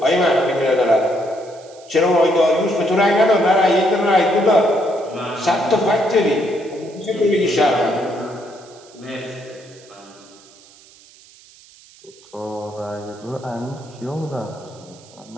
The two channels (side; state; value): right; noise; hiss, 25 dB below the sound